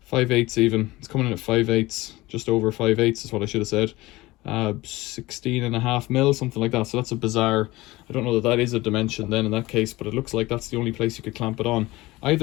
5/8 even. It's coming in at 5/8, just over 5/8 is what I should have said. 16.5 mil, something like that. So that's a bizarre, I don't know that is a dimension then in that case, but it looks like that's the only place you could clamp it on.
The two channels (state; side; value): quieter; right; 19.6 dB